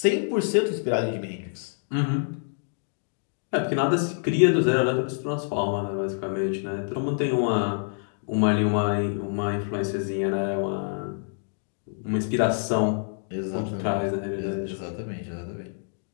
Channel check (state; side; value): silent; right; digital silence